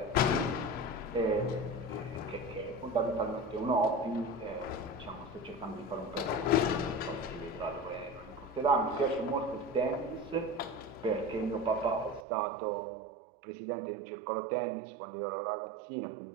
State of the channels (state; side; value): drops out; left; at 12.2 s